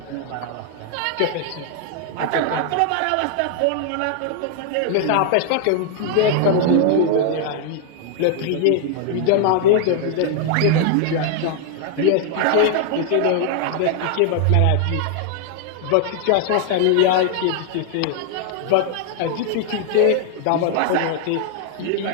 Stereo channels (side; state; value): both; different; correlation 0.00